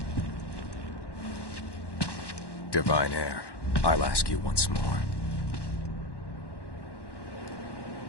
Divine Heir, I'll ask you once more.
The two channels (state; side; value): late; right; 1.1 ms